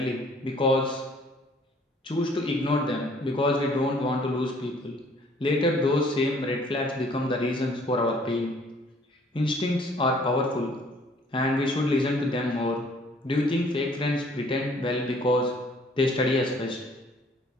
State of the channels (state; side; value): normal; both; correlation 0.58